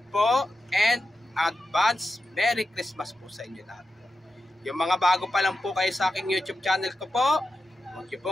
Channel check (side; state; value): both; normal; correlation 0.90